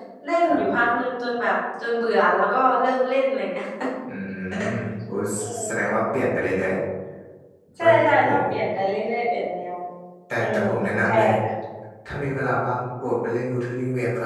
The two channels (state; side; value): identical; both; correlation 1.00